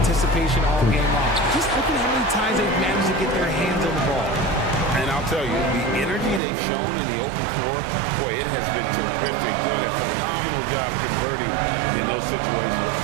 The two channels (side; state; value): left; drops out; at 6.4 s